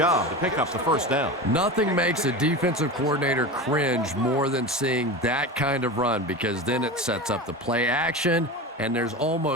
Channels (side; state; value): both; normal; correlation 0.27